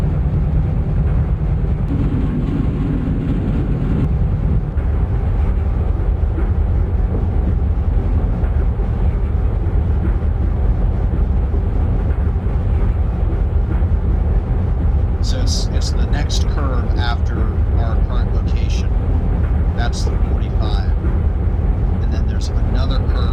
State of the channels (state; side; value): identical; both; correlation 1.00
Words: So it's the next curve after our current location. That's the 45. And then there's another